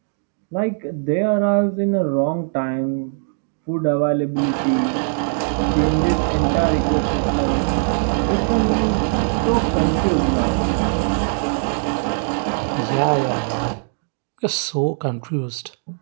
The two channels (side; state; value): left; silent; 65 dB below the other